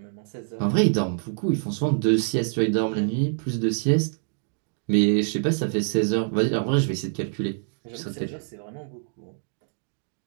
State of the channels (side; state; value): left; silent; digital silence